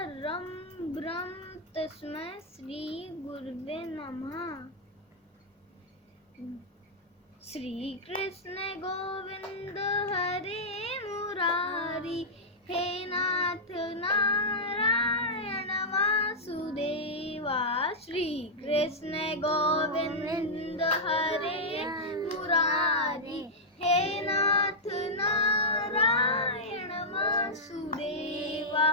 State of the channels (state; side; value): normal; both; correlation -0.08